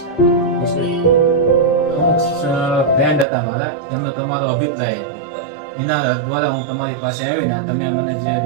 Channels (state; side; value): drops out; left; at 3.2 s